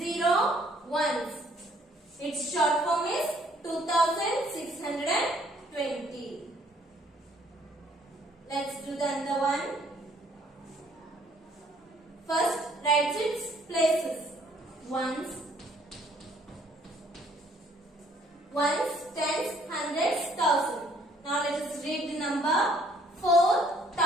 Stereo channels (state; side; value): normal; both; correlation 0.62